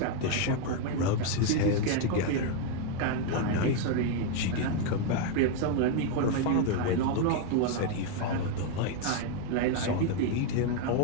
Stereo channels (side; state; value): both; different; correlation 0.01